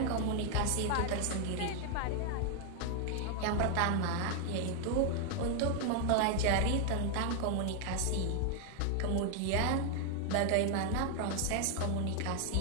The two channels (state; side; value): different; both; correlation 0.00